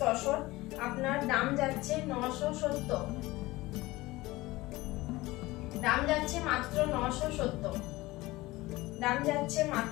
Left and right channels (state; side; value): quieter; right; 19.7 dB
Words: তসর। আপনার দাম যাচ্ছে 970, দাম যাচ্ছে মাত্র 970, দাম যাচ্ছে